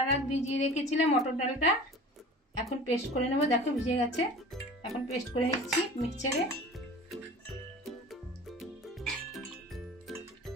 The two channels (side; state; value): both; normal; correlation 0.40